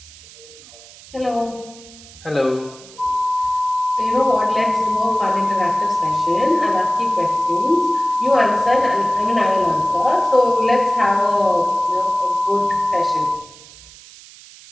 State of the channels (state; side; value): noise; right; hiss, 21 dB below the sound